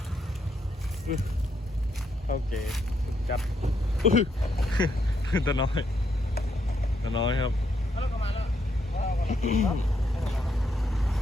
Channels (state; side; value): normal; both; correlation 0.77